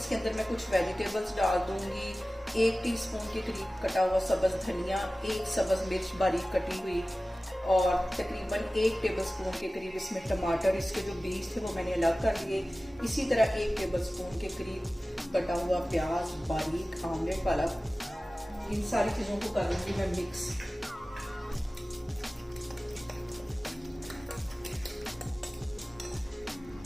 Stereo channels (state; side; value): normal; both; correlation 0.97